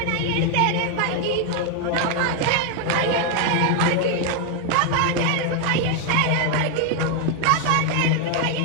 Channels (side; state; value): both; different; correlation 0.01